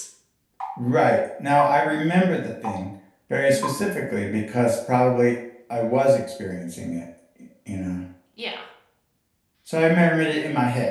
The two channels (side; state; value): both; identical; correlation 1.00